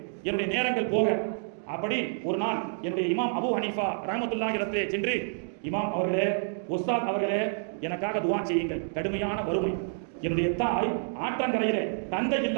என்னுடைய நேரங்கள் போக. அப்படி ஒரு நாள் என்னுடைய இமாம் அபு ஹனீஃபா ரஹ்மத்துல்லாஹி அலைஹிரத்திலே சென்று, இமாம் அவர்களே, உஸ்தாத் அவர்களே, எனக்காக துஆ செய்யுங்கள், கடுமையான வறுமை. என்னுடைய தாய் ஆற்றங்கரையிலே தந்தை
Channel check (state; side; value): silent; left; digital silence